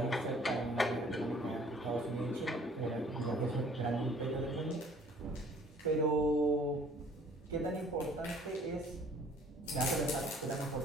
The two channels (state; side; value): normal; both; correlation 0.55